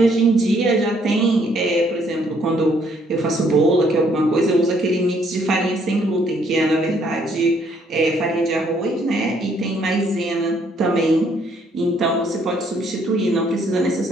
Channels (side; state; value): both; normal; correlation 0.67